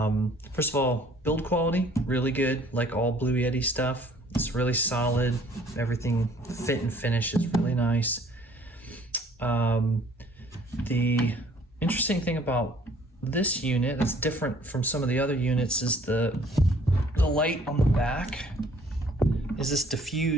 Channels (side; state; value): both; normal; correlation 0.57